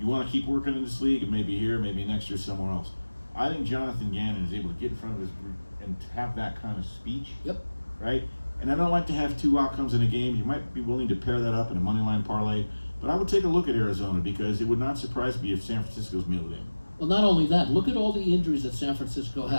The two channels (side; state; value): both; inverted; correlation -1.00